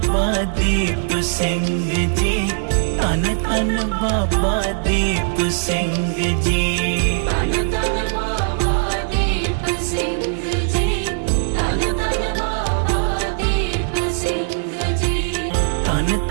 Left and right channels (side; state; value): left; silent; 63 dB below the other